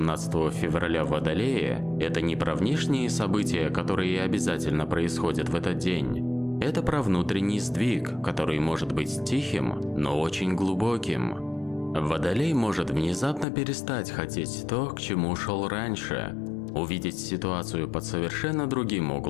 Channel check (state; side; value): drops out; right; at 13.5 s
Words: февраля в Водолее – это не про внешние события, которые обязательно происходят в этот день. Это про внутренний сдвиг, который может быть тихим, но очень глубоким. Водолей может внезапно перестать хотеть то, к чему шел раньше, увидеть ситуацию под совершенно другим